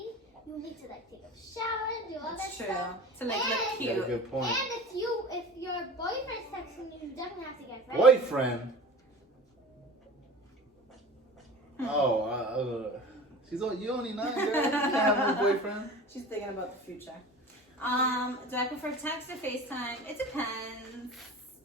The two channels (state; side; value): normal; both; correlation 0.37